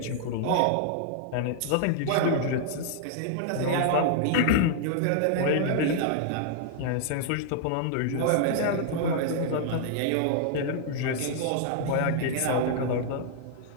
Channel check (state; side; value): different; both; correlation -0.01